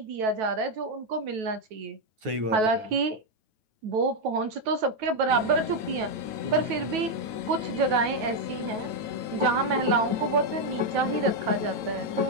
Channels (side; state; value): left; late; 9.2 ms